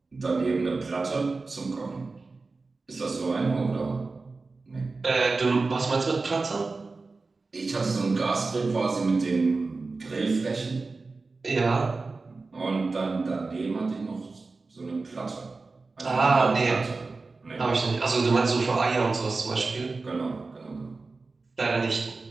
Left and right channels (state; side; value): quieter; left; 3.8 dB